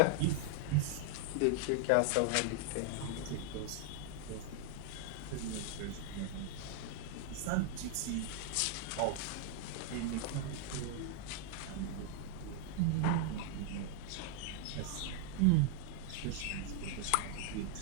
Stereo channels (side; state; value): both; different; correlation 0.00